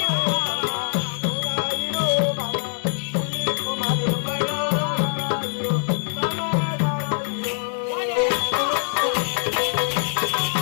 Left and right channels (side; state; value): right; silent; digital silence